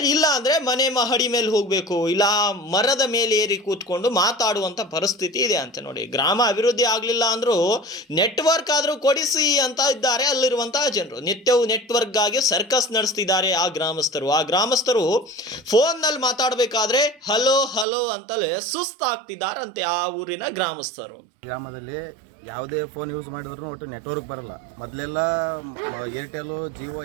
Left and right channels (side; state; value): left; drops out; at 17.9 s